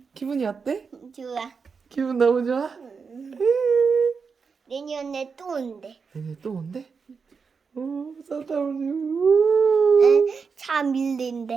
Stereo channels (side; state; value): left; quieter; 5.4 dB